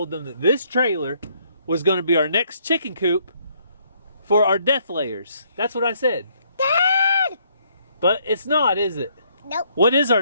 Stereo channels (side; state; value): both; inverted; correlation -0.68